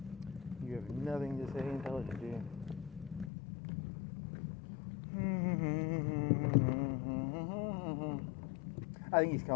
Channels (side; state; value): right; drops out; at 3.3 s